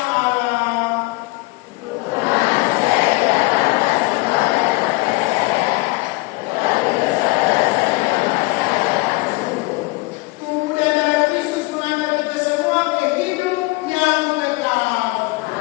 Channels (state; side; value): quieter; right; 23.8 dB